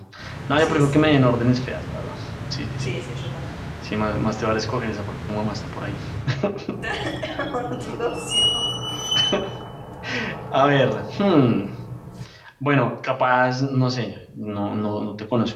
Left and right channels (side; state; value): both; identical; correlation 1.00